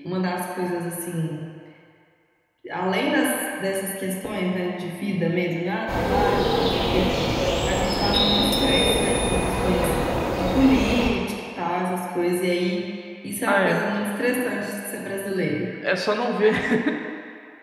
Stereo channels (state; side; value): identical; both; correlation 1.00